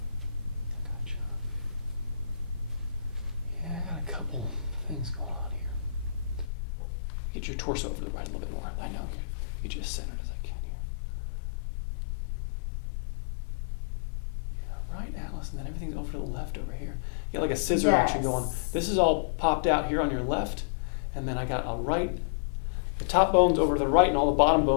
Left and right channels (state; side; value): drops out; right; at 6.5 s